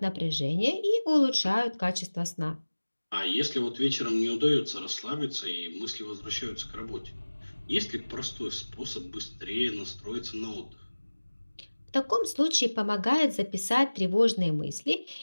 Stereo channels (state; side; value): inverted; both; correlation -1.00